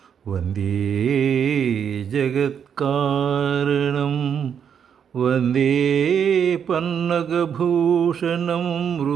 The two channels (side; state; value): left; quieter; 7.8 dB